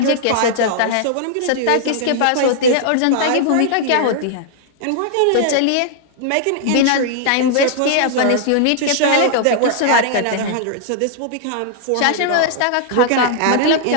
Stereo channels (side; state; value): both; different; correlation -0.01